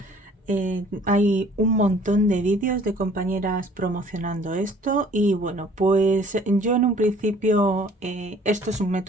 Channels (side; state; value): both; normal; correlation 0.55